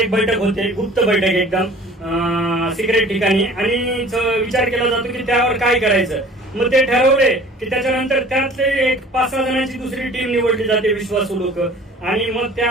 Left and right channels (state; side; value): normal; both; correlation 0.47